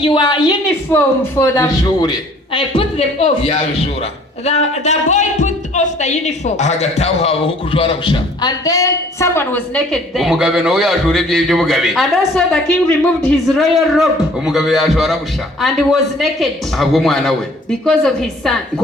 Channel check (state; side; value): normal; both; correlation 0.55